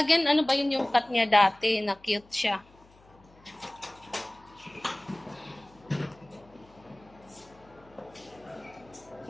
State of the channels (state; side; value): noise; left; hum, 27 dB below the sound